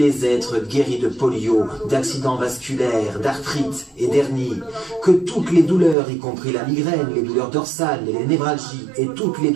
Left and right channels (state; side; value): drops out; left; at 6.0 s